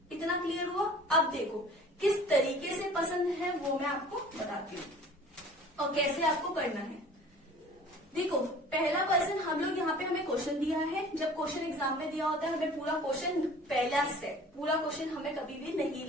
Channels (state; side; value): normal; both; correlation 0.46